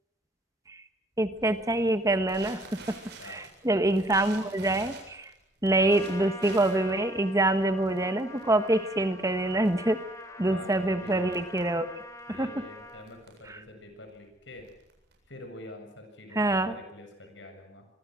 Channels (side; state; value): both; normal; correlation 0.62